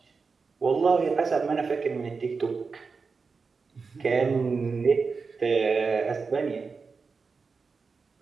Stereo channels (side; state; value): left; quieter; 4.8 dB